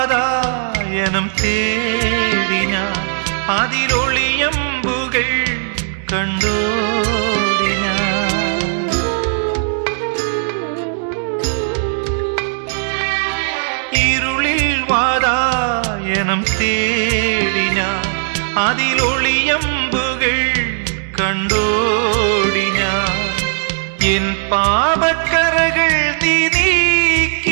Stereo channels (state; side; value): silent; left; digital silence